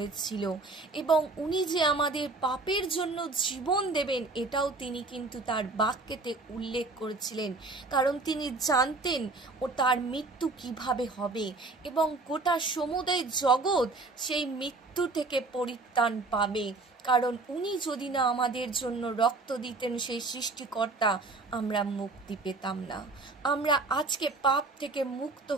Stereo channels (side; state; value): left; quieter; 3.5 dB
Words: এবং উনি যে আমাদের পাপের জন্য জীবন দেবেন এটাও তিনি কিন্তু তার বাক্যেতে উল্লেখ করেছিলেন, কারণ তিনি জানতেন ও তার মৃত্যু কিভাবে হবে এবং গোটা সমুদয় জগৎ সেই মৃত্যু থেকে পরিত্রাণ পাবে। কারণ উনি যদি না আমাদের জন্য রক্ত দিতেন, সেই সৃষ্টিকর্তা, আমরা মুক্তি পেতাম না, আমরা আজকে পাপ থেকে মুক্ত